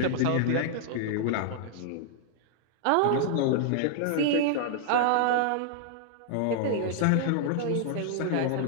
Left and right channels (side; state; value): both; different; correlation -0.01